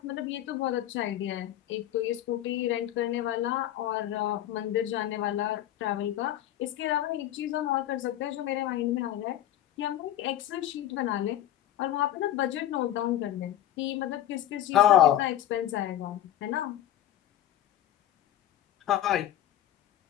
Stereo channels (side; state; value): right; quieter; 12.4 dB